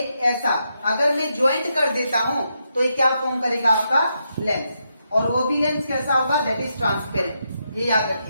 ऐसा अगर मैं ज्वाइंट कर देता हूं तो ये क्या फॉर्म करेगा आपका, लेंस। और वो भी लेंस कैसा होगा, दैट इज ट्रांसपेरेंट, ये याद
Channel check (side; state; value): both; inverted; correlation -0.82